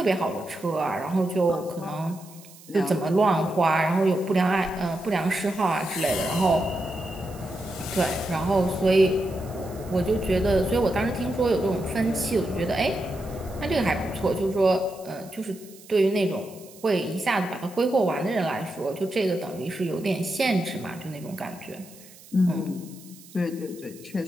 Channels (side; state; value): right; noise; hiss, 21 dB below the sound